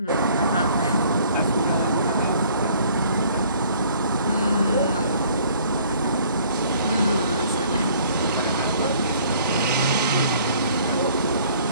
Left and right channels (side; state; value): both; inverted; correlation -0.57